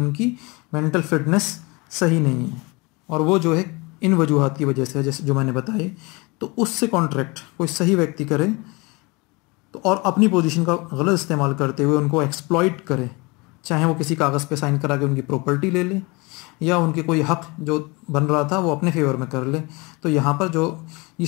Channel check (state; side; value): quieter; right; 26.3 dB